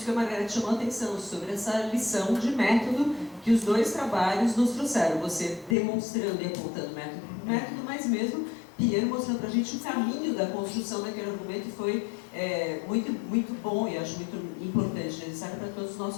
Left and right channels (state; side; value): drops out; right; at 5.8 s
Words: que a Margareth chamou a atenção, sobre essa lição de método que os dois trabalhos nos trouxeram. Você demonstrando e apontando método, mas mesmo Piero mostrando para a gente o caminho da construção daquele argumento, e foi muito, muito bom e acho muito importante, necessário para todos os